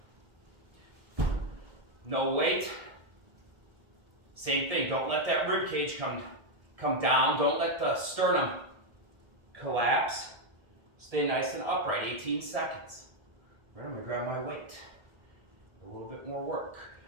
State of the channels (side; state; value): left; late; 1.7 ms